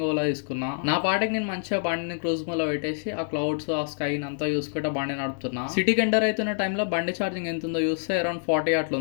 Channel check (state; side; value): silent; right; digital silence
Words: ఓలా తీసుకున్నా. నా పాటికి నేను మంచిగా బండిని క్రూజ్ లో పెట్టేసి ఆ క్లౌడ్స్ ఆ స్కై అంతా చూసుకుంటా బండి నడుపుతున్నా. సిటీకి ఎంటర్ అవుతున్న టైంలో బండి ఛార్జింగ్ ఎంత ఉందో చూస్తే అరౌండ్ 40 అట్లా